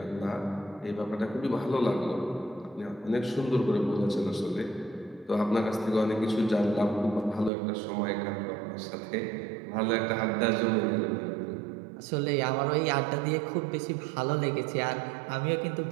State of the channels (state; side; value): drops out; left; at 7.5 s